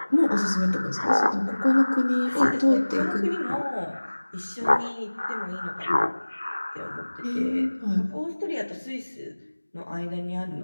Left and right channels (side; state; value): both; inverted; correlation -1.00